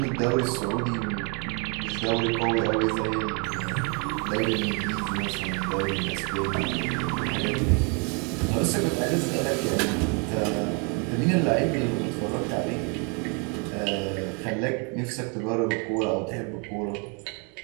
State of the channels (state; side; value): quieter; left; 34.8 dB